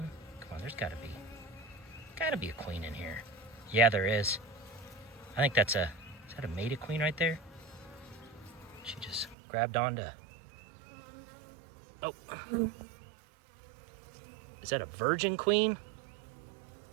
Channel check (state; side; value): drops out; left; at 9.3 s